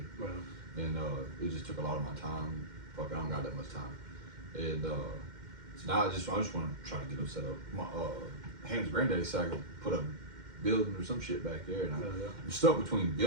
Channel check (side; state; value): left; late; 2.1 ms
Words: and it just took a lot of my time. Fuck, I don't got that much time. And so now I just want to try to get them set up. My Ham's granddaddy said I could put a building or some shit back there, and I'm stuck between